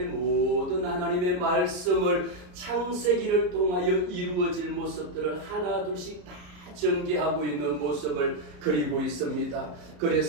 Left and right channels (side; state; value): left; late; 33 ms